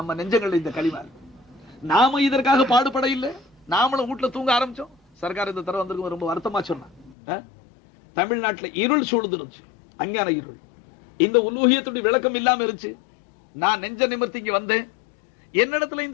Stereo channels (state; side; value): drops out; right; at 7.2 s